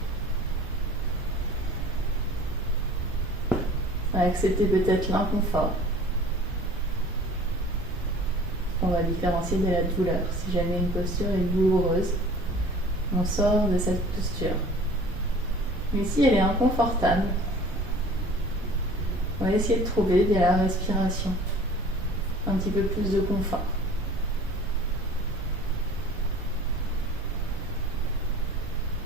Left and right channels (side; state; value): both; normal; correlation 0.46